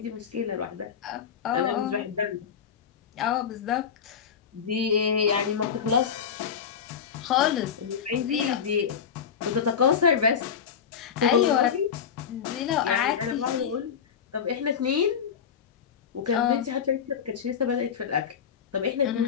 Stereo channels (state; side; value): quieter; right; 7.4 dB